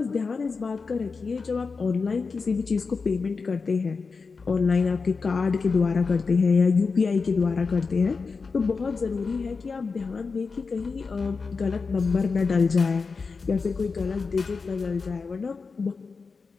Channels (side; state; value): right; quieter; 4.7 dB